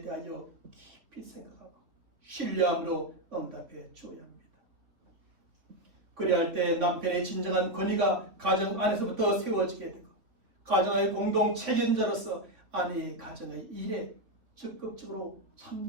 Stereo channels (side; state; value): left; late; 3.8 ms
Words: 깊이 생각하고 신뢰함으로 응답해 주어야 합니다. 그래야 할 때 남편의 진정한 권위가 가정 안에서부터 세워지게 되고 가정의 공동 책임자로서 아내의 가정의 일에 적극적으로